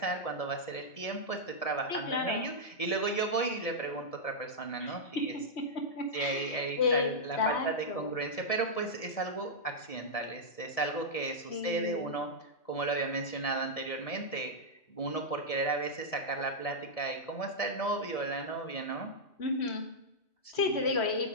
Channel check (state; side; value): late; right; 1.7 ms